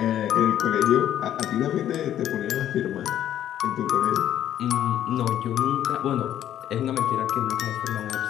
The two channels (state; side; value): quieter; right; 11.2 dB